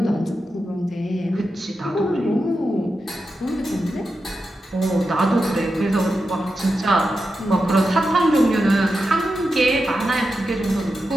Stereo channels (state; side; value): normal; both; correlation 0.89